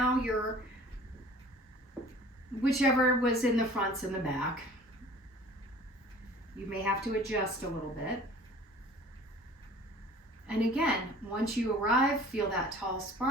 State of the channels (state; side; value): normal; both; correlation 0.47